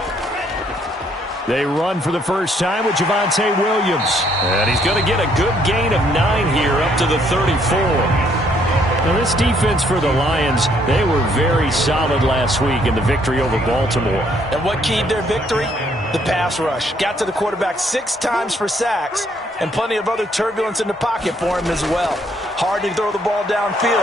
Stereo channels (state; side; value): normal; both; correlation 0.68